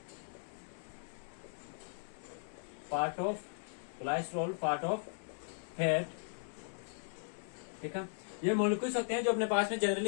पार्ट ऑफ फैट। ठीक है, ये मॉलिक्यूल्स होते हैं जो अपने पास में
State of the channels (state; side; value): silent; right; 53 dB below the other